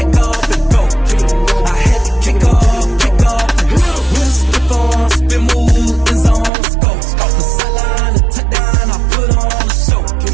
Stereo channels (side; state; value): left; drops out; at 6.5 s